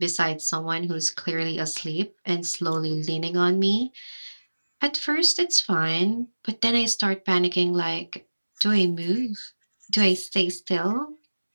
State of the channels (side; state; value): both; inverted; correlation -1.00